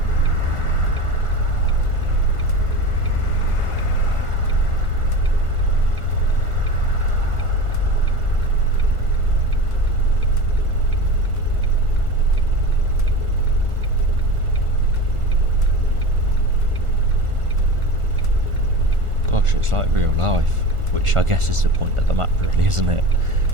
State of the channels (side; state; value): left; late; 1.4 ms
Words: Gosh, it's like real life, which I guess is the point of the map really, isn't it?